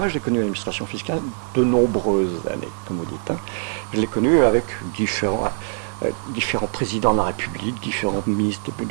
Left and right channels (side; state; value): left; silent; digital silence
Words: j'ai connu l'administration fiscale de nombreuses années, comme vous dites. Hein. Je l'ai connu avec différents présidents de la République, différents ministres